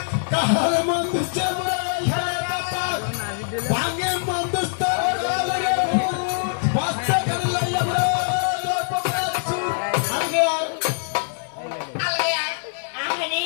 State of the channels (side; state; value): right; silent; 62 dB below the other